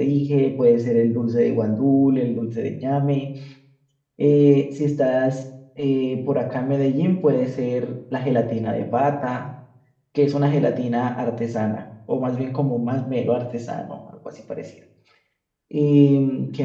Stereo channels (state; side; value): identical; both; correlation 1.00